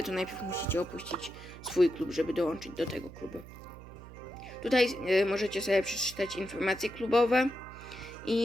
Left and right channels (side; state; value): right; noise; hum, 16 dB below the sound